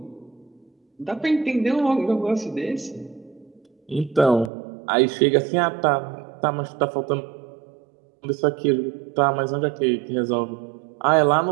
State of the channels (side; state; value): left; drops out; at 4.5 s